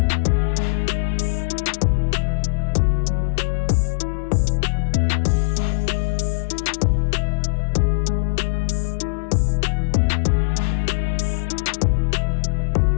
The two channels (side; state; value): right; silent; digital silence